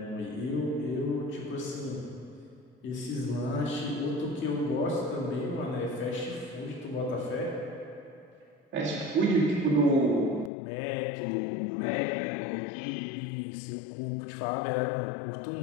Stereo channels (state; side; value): drops out; right; at 10.5 s